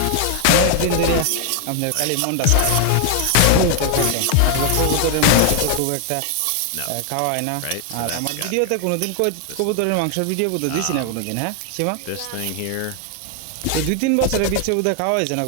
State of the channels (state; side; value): different; both; correlation 0.00